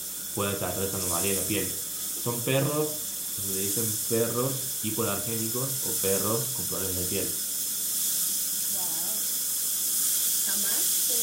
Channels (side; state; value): left; noise; hum, 28 dB below the sound